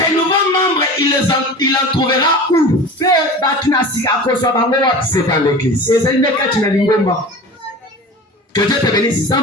nouveaux membres, il en trouvera où? C'est dans l'église. Que Dieu te bénisse.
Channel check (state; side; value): normal; both; correlation 0.35